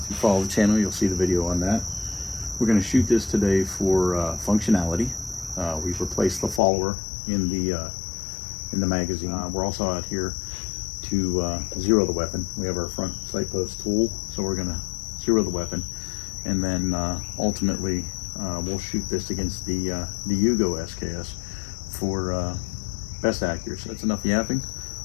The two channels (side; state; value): right; drops out; at 6.6 s